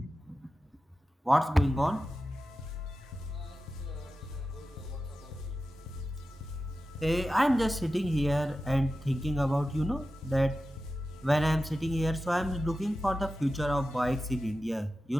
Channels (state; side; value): normal; both; correlation 0.93